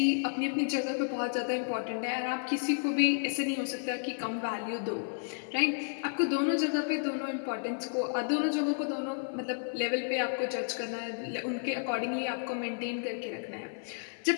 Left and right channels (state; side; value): silent; right; 56 dB below the other